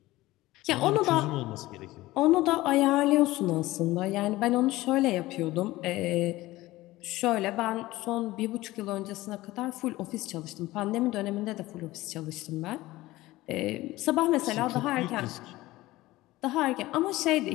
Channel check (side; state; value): right; quieter; 18.0 dB